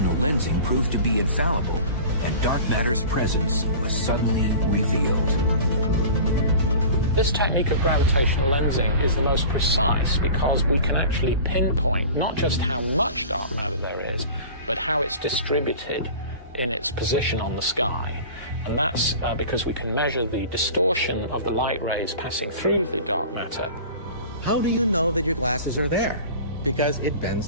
lensing proved to be infallible, and dark matter's presence was suddenly revealed. This technique of gravitational lensing is the most precise because we can actually pinpoint not just how much dark matter there is, but how it's distributed in its position on the sky. And that's because we can measure the distortion of the light rays passing through the dark matter. How do you know that your glasses are there? Because it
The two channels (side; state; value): both; inverted; correlation -0.38